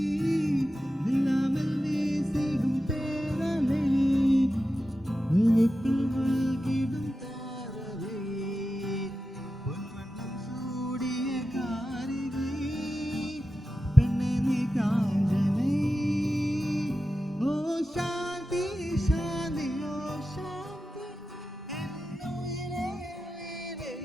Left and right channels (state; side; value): normal; both; correlation 0.92